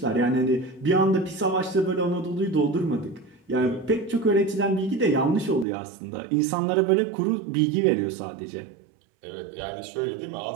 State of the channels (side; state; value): left; drops out; at 5.7 s